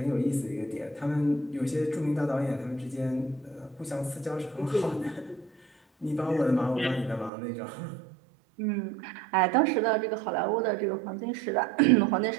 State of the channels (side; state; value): left; drops out; at 7.3 s